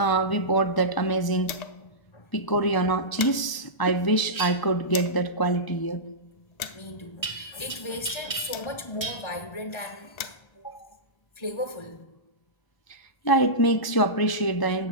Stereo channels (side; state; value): right; late; 1.0 ms